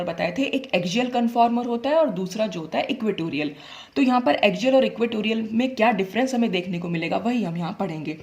बताए थे, एक एक्सियल कन्फॉर्मर होता है और दूसरा जो होता है इक्वेटोरियल। तो यहाँ पर एक्सियल और इक्वेटोरियल में क्या डिफरेंस हमें देखने को मिलेगा वही हम यहाँ पढ़ेंगे।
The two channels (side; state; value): both; identical; correlation 1.00